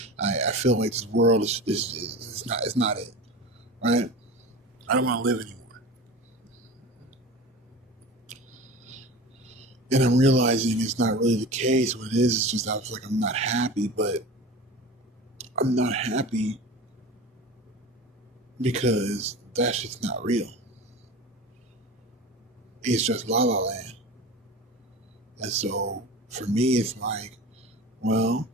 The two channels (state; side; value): normal; both; correlation 0.32